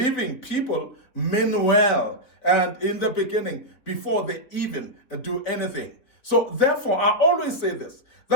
people mean well, and in the beginning, before they even do anything. So therefore, I always say this,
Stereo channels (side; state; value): right; late; 3.8 ms